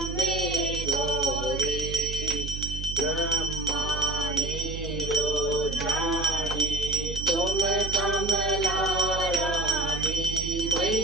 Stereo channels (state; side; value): noise; right; hum, 7 dB below the sound